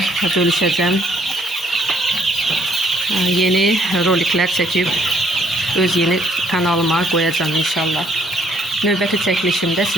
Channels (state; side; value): normal; both; correlation 0.66